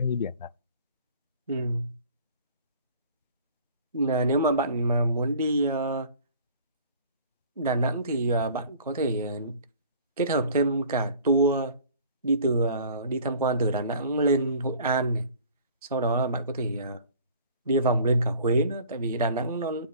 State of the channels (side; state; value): both; inverted; correlation -0.48